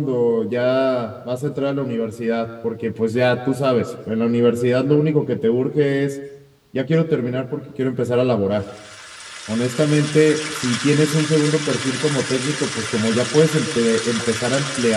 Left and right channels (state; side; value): identical; both; correlation 1.00